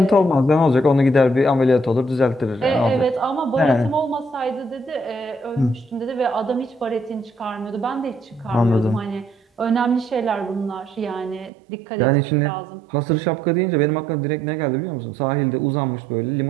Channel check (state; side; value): drops out; left; at 11.5 s